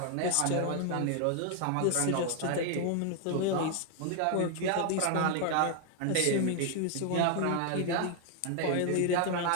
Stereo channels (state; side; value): different; both; correlation 0.00